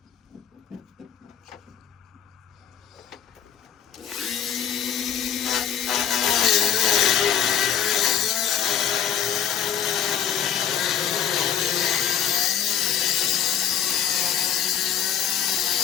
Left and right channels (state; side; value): quieter; right; 8.8 dB